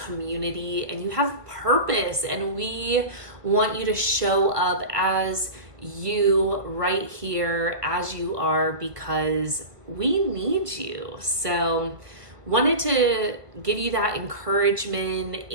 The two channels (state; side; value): late; left; 1.7 ms